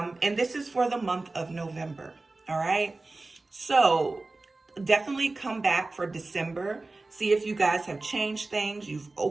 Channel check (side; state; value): left; quieter; 3.3 dB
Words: this is for the month of November, all right? So definitely come back for December. See if you guys have changed things. You've